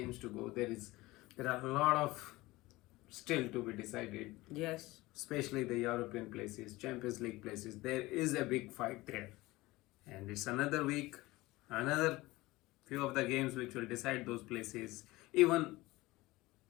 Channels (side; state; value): right; quieter; 19.9 dB